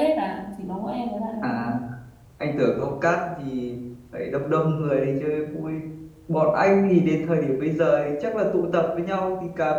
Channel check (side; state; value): both; identical; correlation 1.00